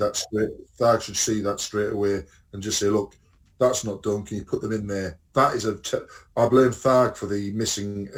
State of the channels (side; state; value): both; identical; correlation 1.00